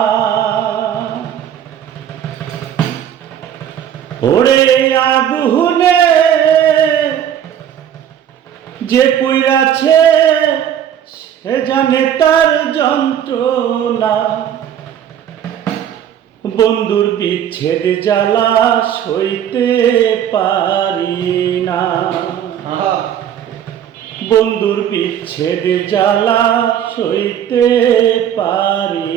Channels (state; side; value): quieter; left; 9.7 dB